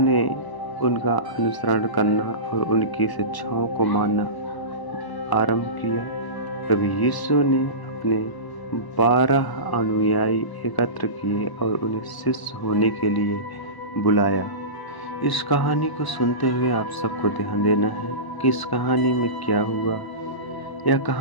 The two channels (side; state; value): right; late; 1.0 ms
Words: उनका अनुसरण करना और उनकी शिक्षाओं को मानना आरंभ किया। प्रभु यीशु ने अपने 12 अनुयायी एकत्र किए और उन्हें शिष्य होने के लिए बुलाया। इस कहानी को सुनते हुए आप सबको ध्यान देना है कि इस कहानी में क्या हुआ। यह